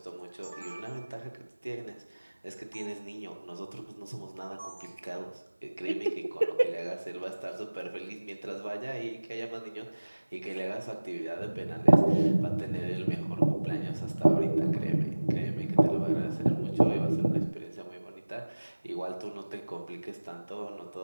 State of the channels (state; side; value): inverted; both; correlation -1.00